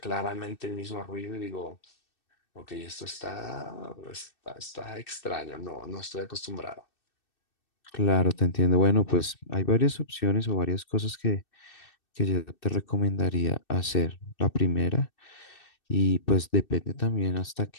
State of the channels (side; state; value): right; late; 2.6 ms